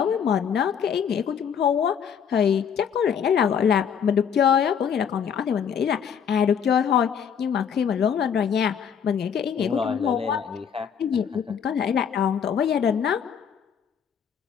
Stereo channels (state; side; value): quieter; right; 7.6 dB